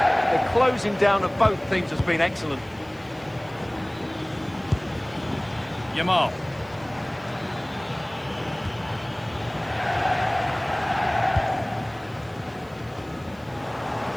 The closing down of both teams has been excellent. Yamal.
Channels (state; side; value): noise; left; hiss, 29 dB below the sound